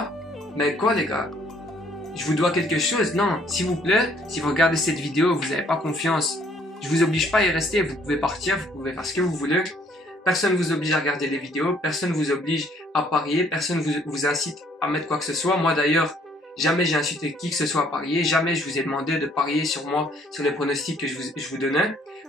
Mais quoi les gars? Je vous dois quelque chose? Non, s'il vous plaît, si vous regardez cette vidéo, vous n'avez pas confiance, je vous oblige pas à y rester, vous pouvez partir, vous pouvez faire ce que vous voulez. Personne ne vous oblige à regarder les vidéos, personne ne vous oblige à parier, personne ne vous incite à mettre quoi que ce soit. Moi d'ailleurs, jamais j'ai incité qui que ce soit à parier, jamais je vous ai demandé de parier sur moi, sur les pronostics que je vous donnais.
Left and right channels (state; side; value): normal; both; correlation 0.63